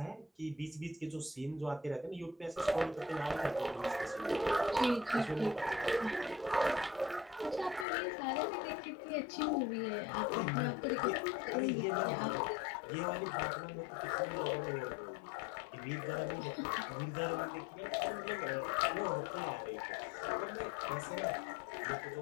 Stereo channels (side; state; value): right; drops out; at 7.9 s